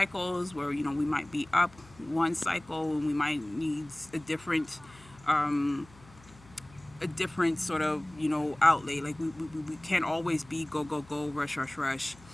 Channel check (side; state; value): left; noise; hum, 24 dB below the sound